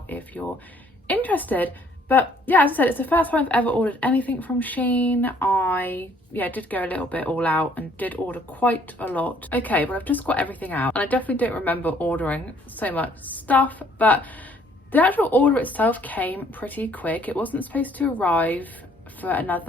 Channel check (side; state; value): both; normal; correlation 0.62